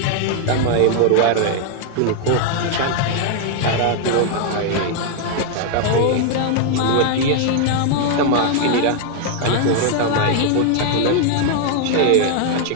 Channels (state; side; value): different; both; correlation 0.00